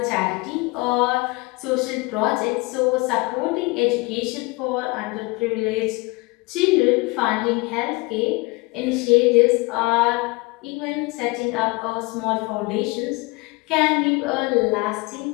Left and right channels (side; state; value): right; quieter; 25.2 dB